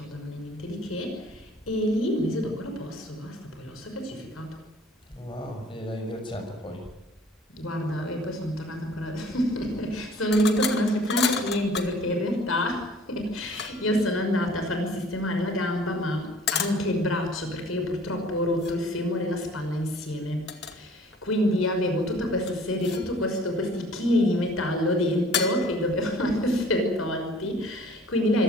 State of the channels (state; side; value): normal; both; correlation 0.52